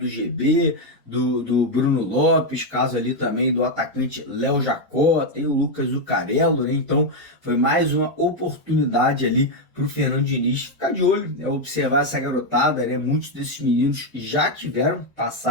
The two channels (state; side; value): normal; both; correlation 0.03